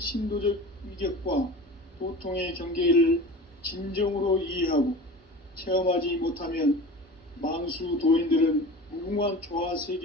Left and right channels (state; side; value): normal; both; correlation 0.35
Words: 신도적 위격과 도통의 경계를 진정으로 이해하고 체험하지 못하면 만수 도인들은 무궁한 조화